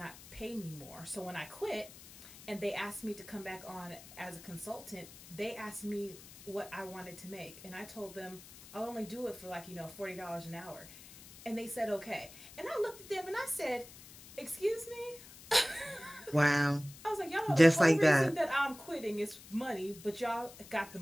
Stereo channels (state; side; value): noise; left; hiss, 18 dB below the sound